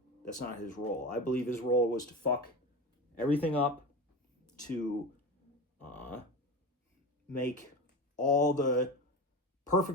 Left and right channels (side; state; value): both; normal; correlation 0.26